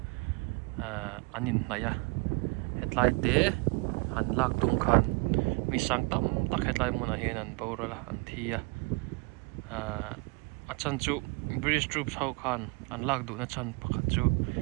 anin naya headlight te han lak tung khan mi sang tam tak headlight mun a hen an boral an thia achan chu British troops ho khan an lak du na chan pakhat chu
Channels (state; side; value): quieter; left; 29.1 dB